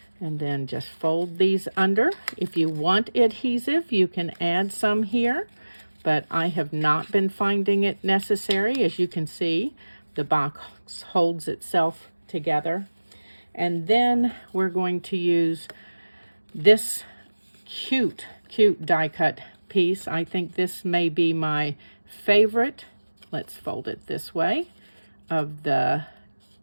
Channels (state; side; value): inverted; both; correlation -1.00